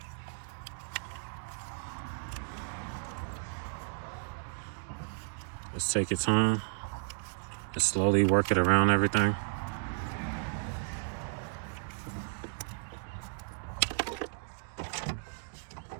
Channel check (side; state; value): left; silent; digital silence